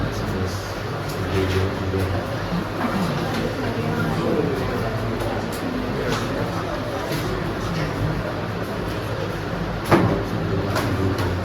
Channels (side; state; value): both; identical; correlation 1.00